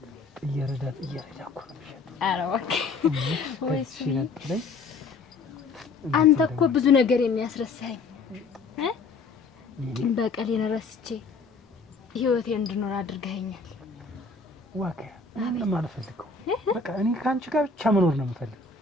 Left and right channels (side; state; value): right; quieter; 4.2 dB